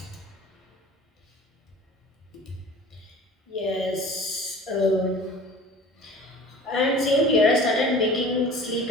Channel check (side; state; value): both; normal; correlation 0.43